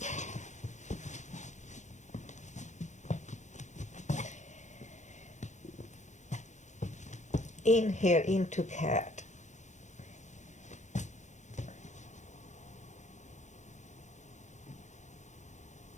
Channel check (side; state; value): right; late; 0.35 ms